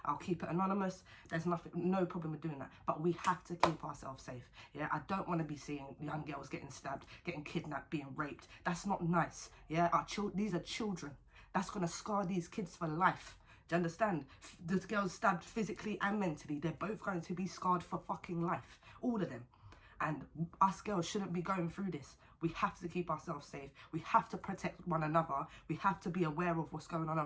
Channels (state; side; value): identical; both; correlation 1.00